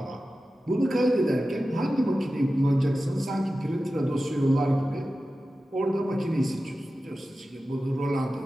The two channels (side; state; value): both; normal; correlation 0.94